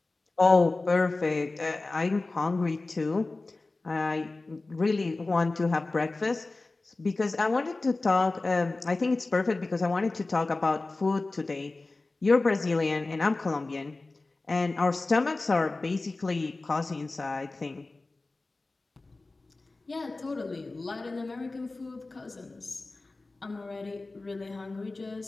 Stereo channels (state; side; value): quieter; right; 3.3 dB